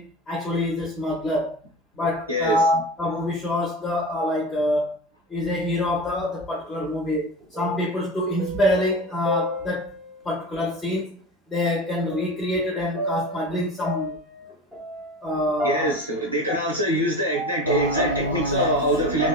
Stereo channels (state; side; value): normal; both; correlation 0.30